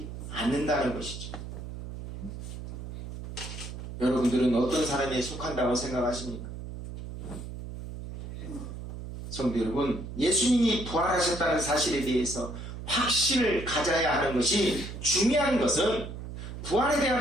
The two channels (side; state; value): right; noise; hum, 9 dB below the sound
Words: 않는다는 것이죠. 여러분들은 어떤 사람에 속한다고 생각하십니까? 성도 여러분, 예수님이 부활하셨다는 사실에 대해서 확신을 가져야 하는 것이 중요한 것은 부활에